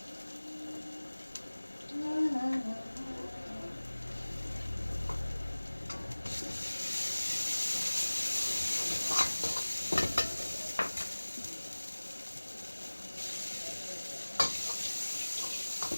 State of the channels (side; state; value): both; inverted; correlation -1.00